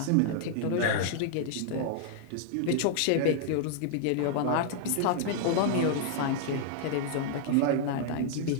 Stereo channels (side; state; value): both; different; correlation 0.00